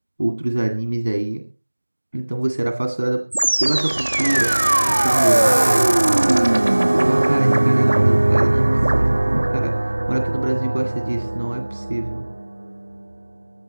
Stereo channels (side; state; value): both; inverted; correlation -1.00